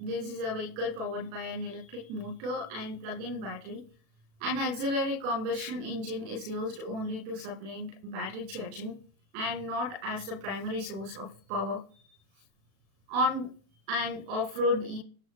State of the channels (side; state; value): left; late; 37 ms